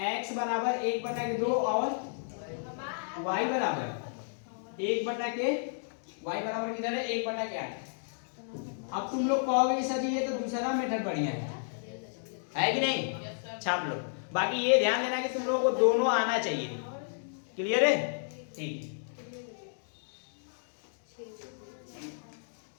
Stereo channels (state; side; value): silent; right; digital silence